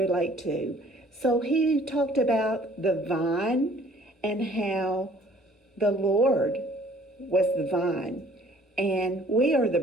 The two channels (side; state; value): both; normal; correlation 0.55